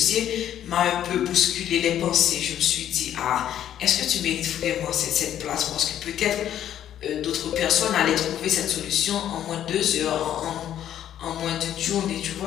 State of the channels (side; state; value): right; quieter; 10.9 dB